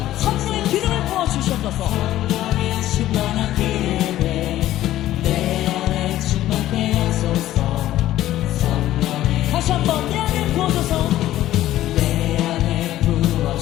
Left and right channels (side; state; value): right; quieter; 13.9 dB